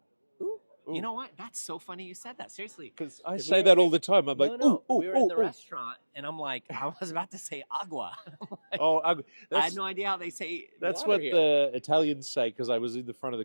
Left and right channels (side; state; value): both; inverted; correlation -1.00